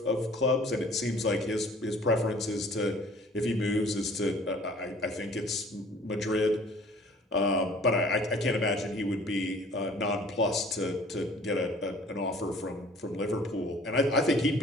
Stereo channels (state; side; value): normal; both; correlation 0.51